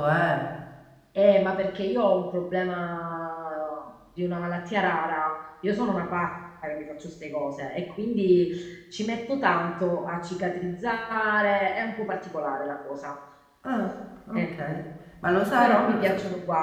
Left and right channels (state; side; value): identical; both; correlation 1.00